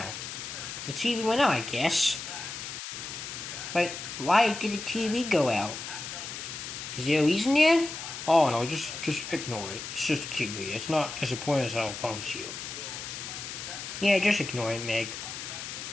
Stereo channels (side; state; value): left; noise; hiss, 8 dB below the sound